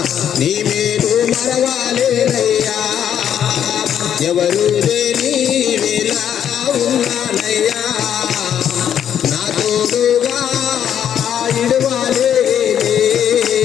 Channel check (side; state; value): right; quieter; 9.4 dB